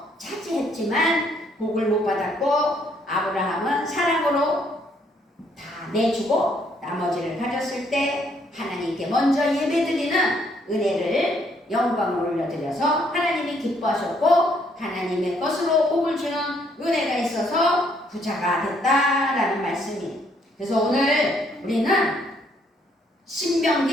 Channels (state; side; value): normal; both; correlation 0.69